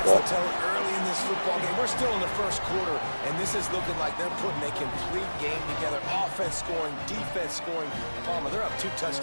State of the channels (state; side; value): inverted; both; correlation -1.00